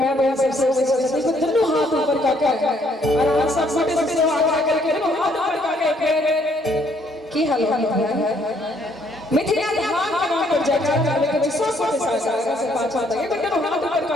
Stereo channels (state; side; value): normal; both; correlation 0.67